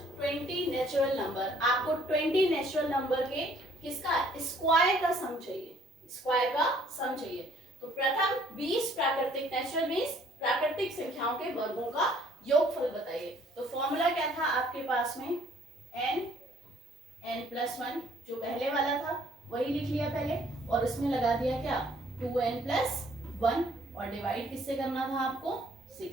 20 natural number. आपको 20 नेचुरल नंबर के किसका स्क्वायर का सम चाहिए, स्क्वायर का सम चाहिए। तो प्रथम 20 प्राकृतिक, नेचुरल 20 प्राकृतिक संख्याओं के वर्गों का योगफल बताइए। तो फॉर्मूला क्या था आपके पास में, n+1 जो पहले वाला था वही लिख लिया पहले, और उसमें लगा दिया क्या, 2n+1, और डिवाइड किससे करना था आपको, 6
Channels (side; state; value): both; normal; correlation 0.61